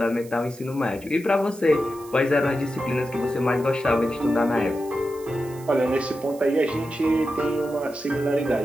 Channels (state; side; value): noise; right; hiss, 21 dB below the sound